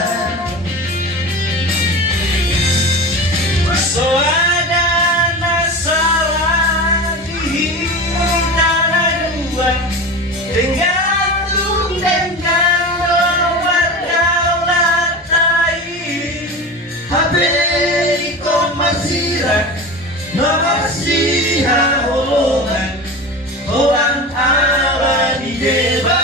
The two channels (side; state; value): both; normal; correlation 0.29